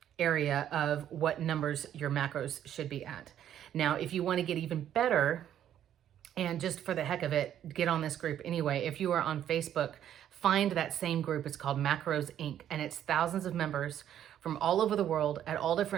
area of what numbers your macros should be at. Now, if you want to get even better, and just for the heck of it, get on this group anyway. If you are on Facebook, find that same group. It's called Macros Inc. And it's thousands of members from all over the world at all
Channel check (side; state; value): left; quieter; 10.6 dB